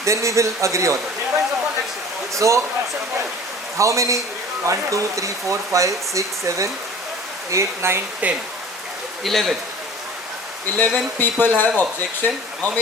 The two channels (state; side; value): normal; both; correlation 0.44